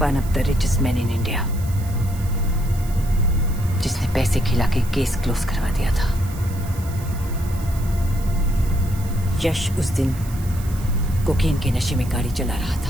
of the richest man in India, जिसने पैसे खिला के केस क्लोज करवा दिया था। यश उस दिन कोकेन के नशे में गाड़ी चला रहा था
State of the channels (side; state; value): right; noise; hiss, 18 dB below the sound